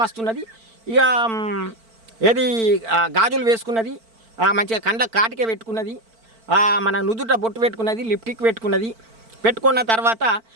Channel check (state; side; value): late; left; 4.5 ms